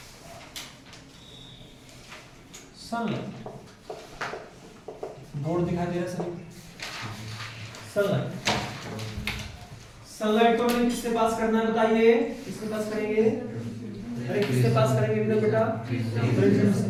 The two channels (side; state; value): both; identical; correlation 1.00